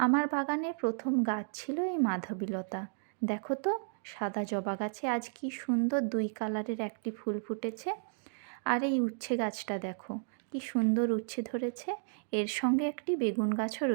বাগানের প্রথম গাছ ছিল এই মাধবীলতা। দেখো তো, সাদা জবা গাছে আজ কি সুন্দর দুই কালারের একটি ফুল ফুটেছে। আর এই উচ্ছে গাছটা দেখো, কি সুন্দর উচ্ছে ধরেছে। এর সঙ্গে একটি বেগুন গাছও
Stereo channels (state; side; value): silent; left; digital silence